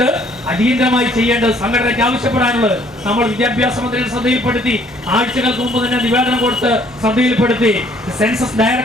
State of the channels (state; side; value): normal; both; correlation 0.61